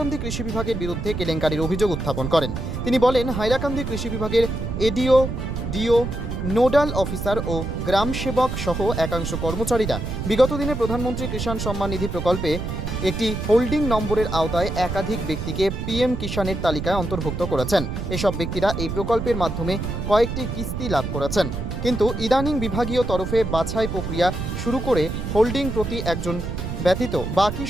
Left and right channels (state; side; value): noise; right; rumble, 4 dB below the sound